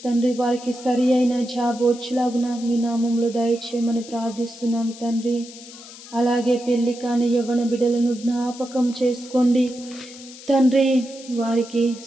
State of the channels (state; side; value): noise; left; hiss, 17 dB below the sound